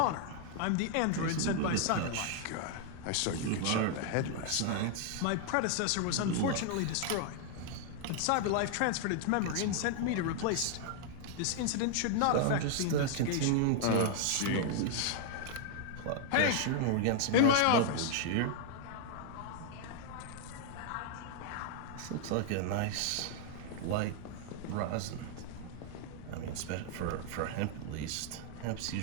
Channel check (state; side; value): different; both; correlation 0.00